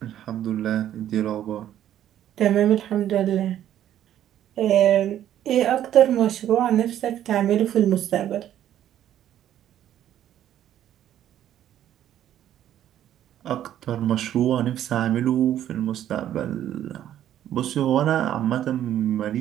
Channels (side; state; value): left; quieter; 11.4 dB